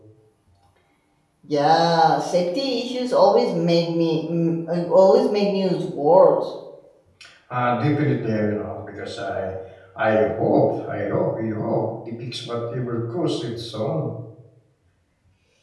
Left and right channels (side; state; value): both; identical; correlation 1.00